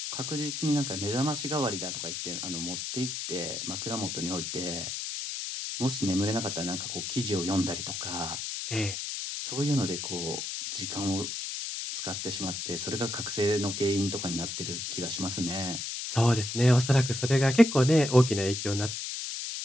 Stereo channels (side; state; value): left; noise; hiss, 4 dB below the sound